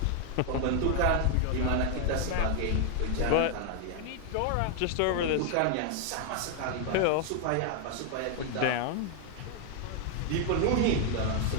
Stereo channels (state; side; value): different; both; correlation 0.00